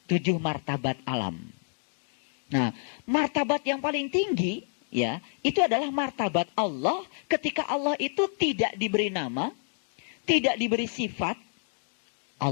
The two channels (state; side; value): silent; right; digital silence